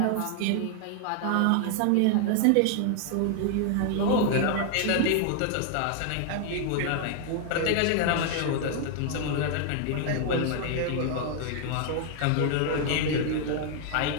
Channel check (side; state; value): both; different; correlation 0.00